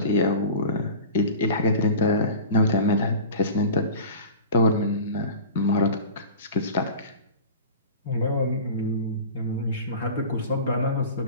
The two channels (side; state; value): both; inverted; correlation -0.35